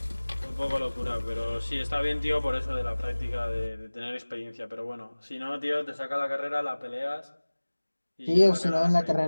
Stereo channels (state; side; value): inverted; both; correlation -1.00